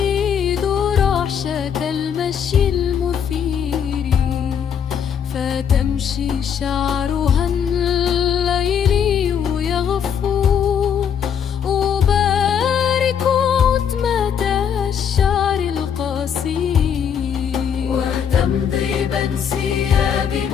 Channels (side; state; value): right; quieter; 8.0 dB